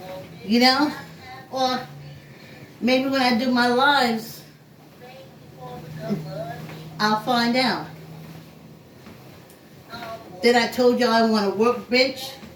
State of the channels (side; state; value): both; identical; correlation 1.00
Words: You know? Or maybe when I do my lives, I'll find out. Then I told y'all I want to work bench,